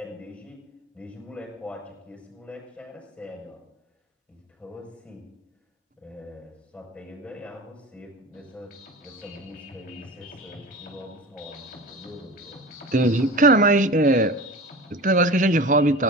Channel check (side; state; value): both; normal; correlation 0.34